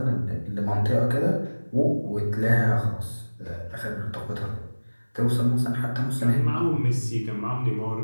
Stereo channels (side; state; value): both; inverted; correlation -1.00